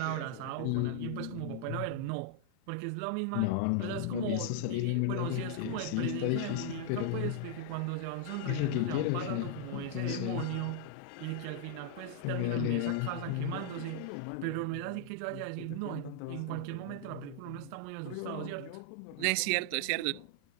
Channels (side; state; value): both; different; correlation -0.01